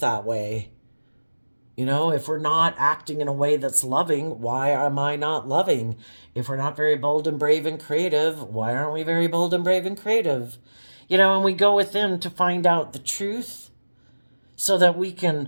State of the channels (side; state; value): both; inverted; correlation -1.00